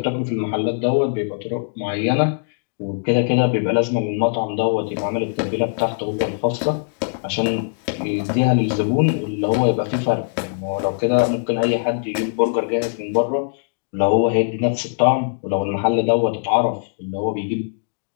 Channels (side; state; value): right; silent; digital silence